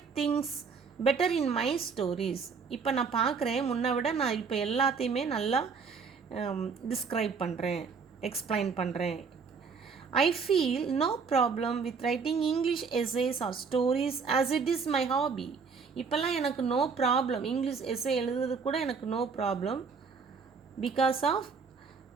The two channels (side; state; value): left; quieter; 5.4 dB